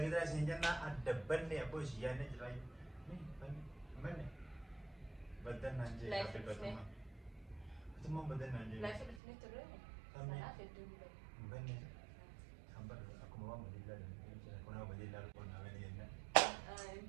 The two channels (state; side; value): drops out; left; at 9.2 s